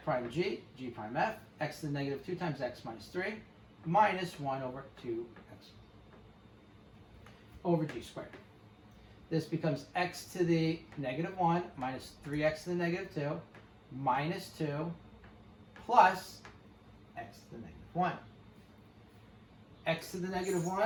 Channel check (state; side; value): identical; both; correlation 1.00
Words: prime g, g prime f, x to the negative 2 times x minus 3, minus 1 over 2x over g squared. This becomes x to the negative 1 minus 3x to the negative 2 minus 2 plus x to the negative 1. X to the negative